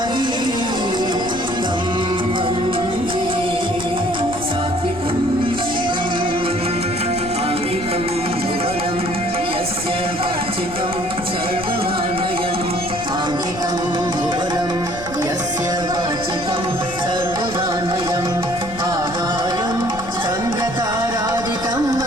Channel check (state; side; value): noise; left; rumble, 14 dB below the sound